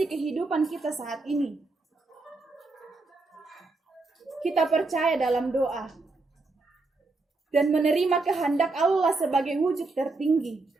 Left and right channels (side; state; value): left; quieter; 3.5 dB